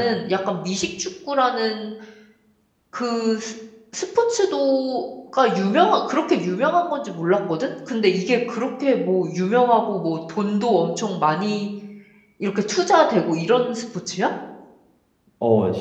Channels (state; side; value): identical; both; correlation 1.00